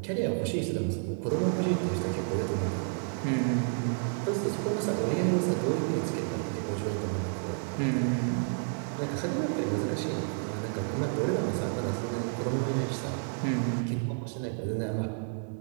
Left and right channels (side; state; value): left; silent; 58 dB below the other